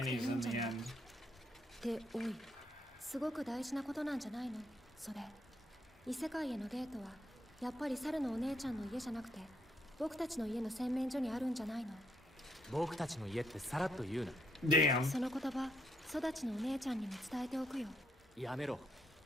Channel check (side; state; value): both; normal; correlation 0.75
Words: in the end. で、おい、すごく大事なことなんじゃないのそれ。異世界へのゲートは、やっぱり猿のお姉ちゃんの家じゃなくて、僕たちの家の洗面所にあるんじゃないの？僕たちの家ってさらっと言うな。 Damn. その言葉、育ちのお姉ちゃんにも伝えておくよ。やめろ。